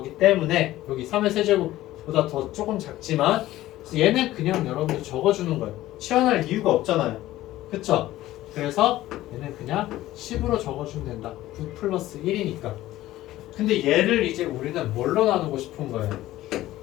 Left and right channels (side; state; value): right; quieter; 15.4 dB